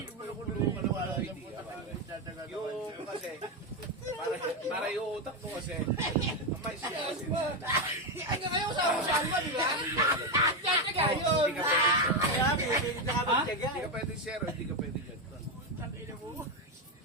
mo na kulungan na wala idea. Yung kasi, para yung utak mo kasi, may siya kasi. Ay, kayo sa ba, di ba? Tsatsaga yun! Hindi ka pwede. Kaya, pwede na kami tiyaga. Hindi ka pwede zero, hindi ka pwede dyan.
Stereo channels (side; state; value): both; normal; correlation 0.09